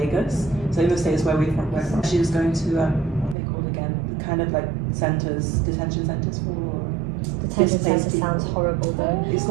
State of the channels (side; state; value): left; drops out; at 3.4 s